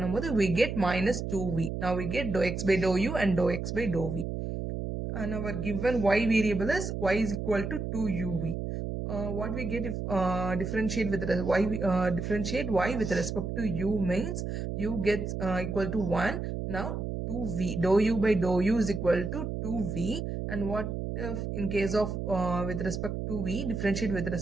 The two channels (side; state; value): right; noise; hum, 4 dB below the sound